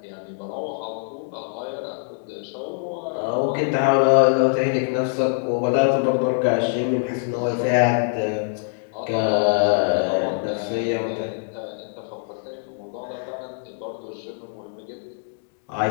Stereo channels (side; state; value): right; silent; digital silence